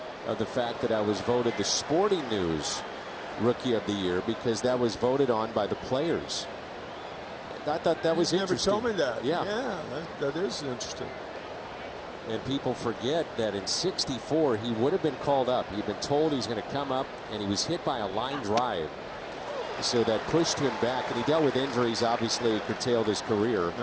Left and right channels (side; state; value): both; identical; correlation 1.00